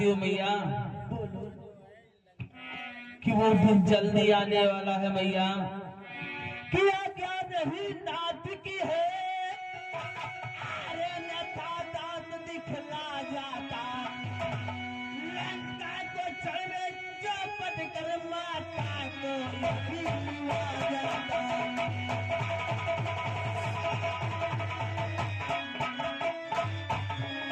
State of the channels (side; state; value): both; identical; correlation 1.00